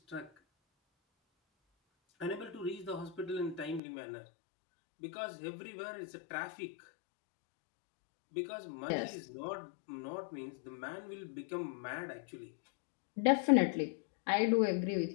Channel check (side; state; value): right; drops out; at 3.8 s